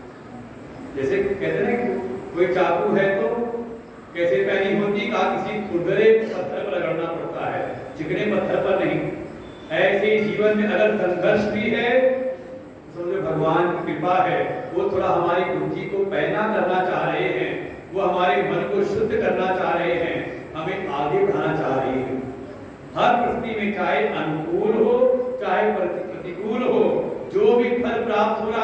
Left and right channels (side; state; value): both; identical; correlation 1.00